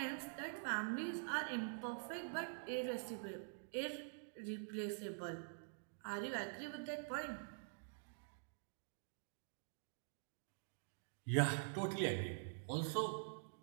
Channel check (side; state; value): left; silent; digital silence